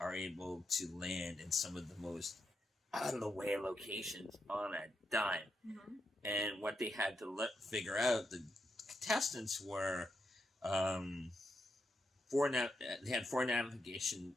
able to land in some of the most out-of-the-way locations on a dime. Mm-hmm. And what they had to figure out, the contestants were they had 4 navigation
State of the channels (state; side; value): normal; both; correlation 0.83